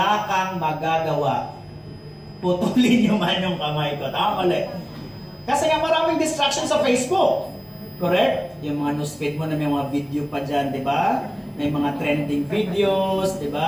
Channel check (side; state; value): both; identical; correlation 1.00